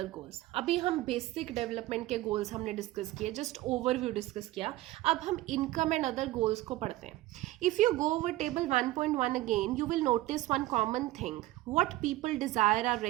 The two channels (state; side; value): quieter; left; 17.1 dB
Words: गोल्स। अभी हम बेसिक डेवलपमेंट के गोल्स हमने डिस्कस किए, जस्ट ओवरव्यू डिस्कस किया। अब हम इनकम एंड अदर गोल्स को पढ़ते हैं। If you go over table 1.1 again, you will notice one common thing. What people desire are